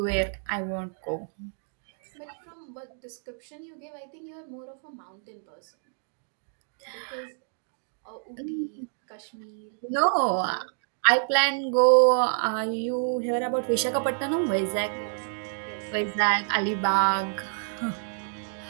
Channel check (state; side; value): silent; left; digital silence